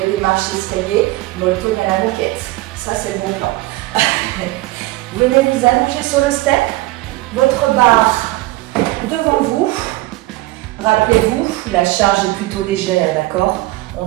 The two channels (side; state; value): left; quieter; 19.1 dB